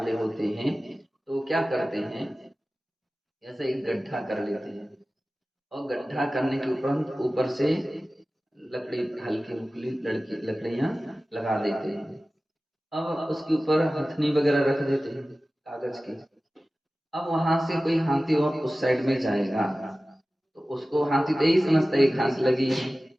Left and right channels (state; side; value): normal; both; correlation 0.96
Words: होते हैं तो क्या करते हैं, ऐसे एक गड्ढा कर लेते हैं और गड्ढा करने के उपरांत ऊपर से लकड़ी, हल्की फुल्की लकड़ियां लगा देते हैं। अब उसके ऊपर हथनी वगैरह रख देते हैं कागज की। अब वहां से कोई हाथी और उस साइड में जाएगा तो उसको हाथी तो यही समझता है घास लगी है,